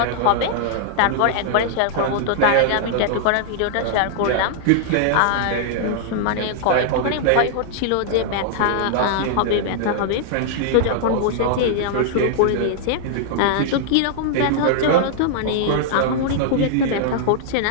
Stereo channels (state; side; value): different; both; correlation -0.01